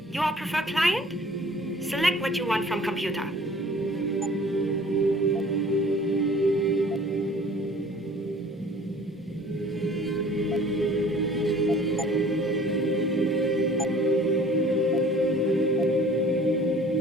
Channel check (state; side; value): normal; both; correlation 0.50